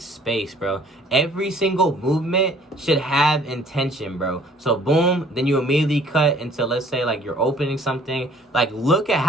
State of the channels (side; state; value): both; normal; correlation 0.56